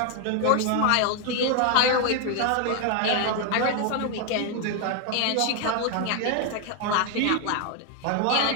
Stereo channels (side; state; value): both; different; correlation 0.01